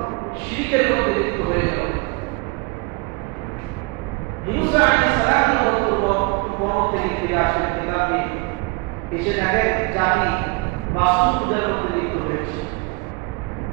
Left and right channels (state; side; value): quieter; left; 28.4 dB